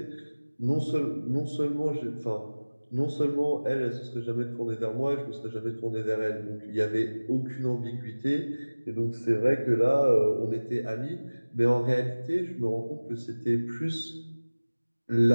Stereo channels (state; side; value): inverted; both; correlation -1.00